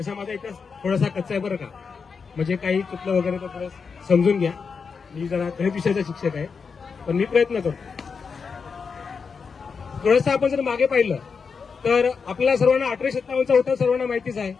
माझा इतिहास थोडासा कच्चा आहे बरं का, म्हणजे काही चुकलं वगैरे तर थोडं समजून घ्या. मी जरा गणित विषयाचा शिक्षक आहे, पण मी प्रयत्न करतो. थोडंसं आपण जर मागे पाहिलं तर आपल्याला सर्वांना 1857चा होता, सर्वांना माहितीच आहे.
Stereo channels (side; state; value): right; quieter; 5.5 dB